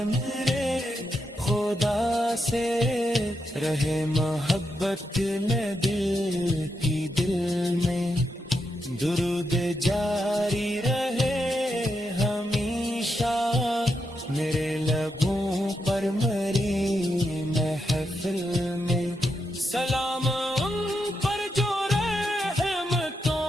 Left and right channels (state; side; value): normal; both; correlation 0.84